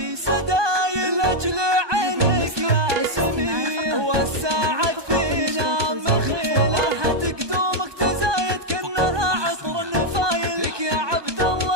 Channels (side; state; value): left; late; 1.2 ms